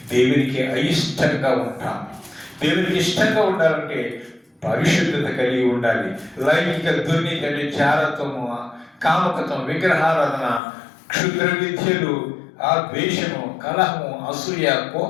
దేవునికి అయిష్టంగా ఉంటాం. దేవునికి ఇష్టంగా ఉండాలంటే పరిశుద్ధత కలిగి ఉండాలి. లైంగిక దుర్నీతి అంటే చారత్వము, కామకత్వం, విగ్రహారాధన, క్షుద్ర విద్యలు, ద్వేషము, కలహము, అసూయ,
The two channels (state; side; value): drops out; right; at 10.6 s